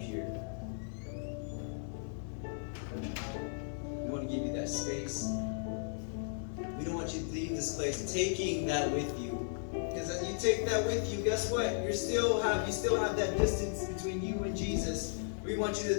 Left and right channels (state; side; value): silent; right; digital silence